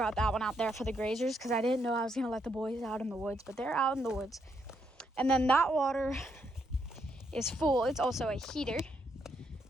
that one out there for the grazers because I didn't know I was going to let the boys out in the woods. But they're out in the woods. And then that water is full. It's also a heater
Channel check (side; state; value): both; normal; correlation 0.77